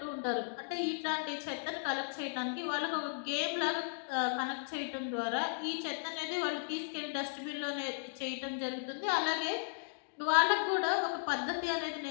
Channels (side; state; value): right; silent; digital silence